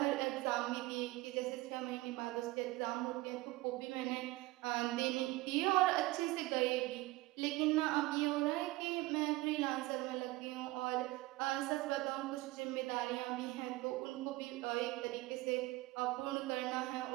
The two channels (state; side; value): quieter; left; 20.0 dB